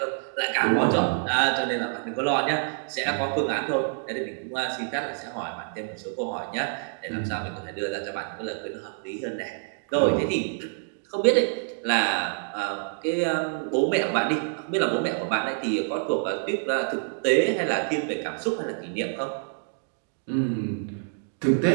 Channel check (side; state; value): left; silent; digital silence